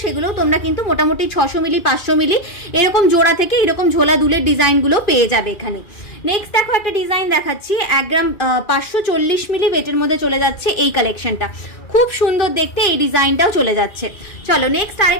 সেগুলোও তোমরা কিন্তু মোটামুটি 600 মিলি 500 মিলি এরকম জোড়া থেকে এরকম ঝোলা দুলের ডিজাইনগুলো পেয়ে যাবে এখানে। নেক্সট দেখো একটা ডিজাইন দেখাচ্ছি, 1 গ্রাম 540 মিলি ওয়েটের মধ্যে চলে যাচ্ছে এই কালেকশনটা, খুব সুন্দর দেখতে এই ডিজাইনটাও চলে যাচ্ছে। চলো নেক্সট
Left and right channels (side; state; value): right; late; 2.3 ms